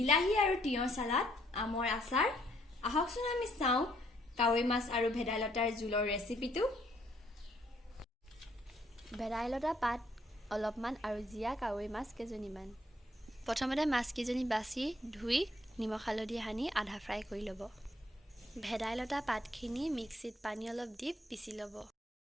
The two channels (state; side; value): normal; both; correlation 0.68